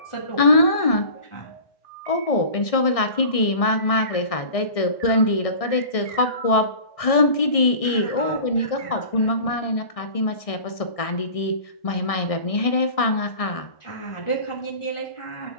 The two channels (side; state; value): right; late; 1.6 ms